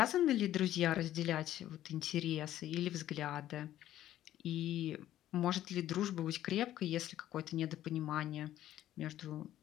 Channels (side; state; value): right; quieter; 12.9 dB